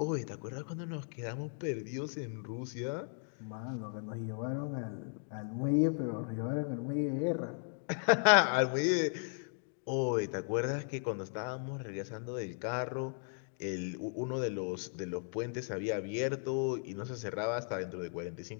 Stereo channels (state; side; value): silent; right; 54 dB below the other